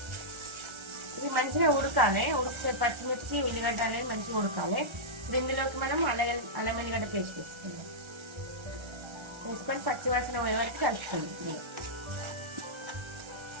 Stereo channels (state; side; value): late; left; 1.3 ms